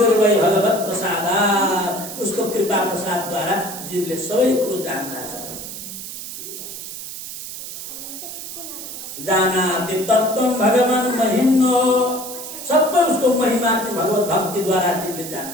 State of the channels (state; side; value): noise; right; hiss, 9 dB below the sound